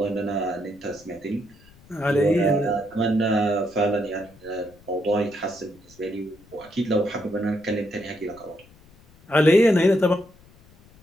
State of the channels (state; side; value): noise; left; rumble, 26 dB below the sound